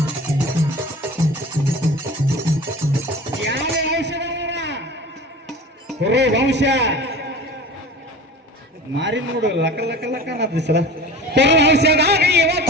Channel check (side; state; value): both; normal; correlation 0.38